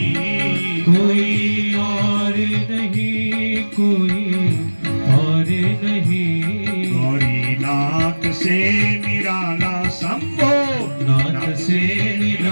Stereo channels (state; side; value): inverted; both; correlation -1.00